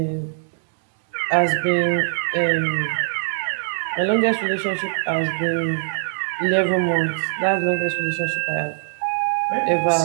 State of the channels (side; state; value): left; silent; 64 dB below the other